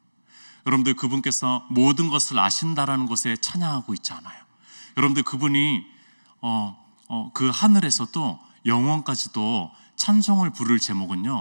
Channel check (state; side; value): inverted; both; correlation -1.00